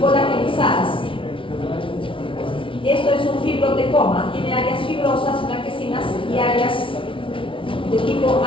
Esto es un fibrotecoma, tiene áreas fibrosas, blanquecinas y áreas de tipo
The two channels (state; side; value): late; right; 0.25 ms